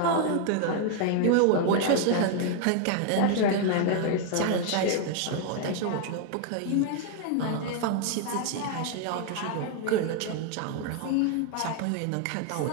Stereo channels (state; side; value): different; both; correlation 0.00